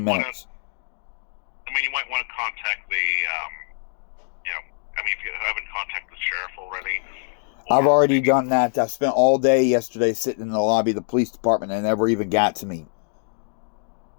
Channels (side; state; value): right; silent; digital silence